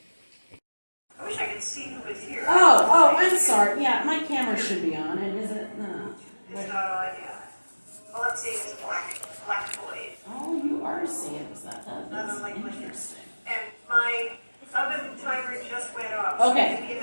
I wish I could see who was here. Oh, I'm sorry. Yeah, my camera should be on, and is it? No. It's not on, yeah. All I'm seeing is a black void. Oh, you are seeing that. That Not is unlike my interesting. And my oven timer just went off. Okay. So give me a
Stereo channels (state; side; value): inverted; both; correlation -1.00